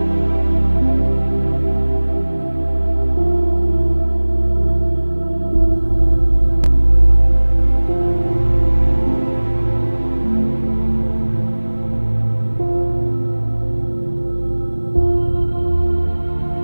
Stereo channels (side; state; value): both; inverted; correlation -1.00